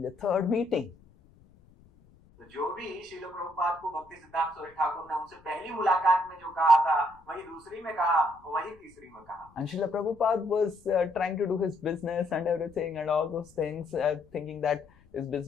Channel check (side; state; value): left; noise; rumble, 28 dB below the sound